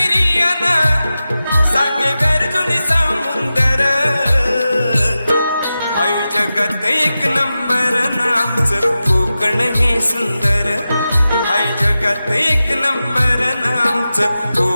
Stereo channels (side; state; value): both; inverted; correlation -0.93